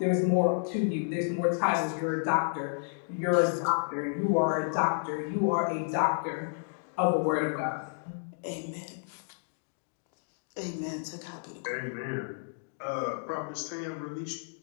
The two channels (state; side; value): silent; right; digital silence